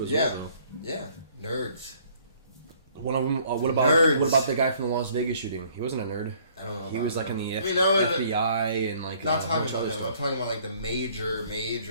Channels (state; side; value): inverted; both; correlation -0.60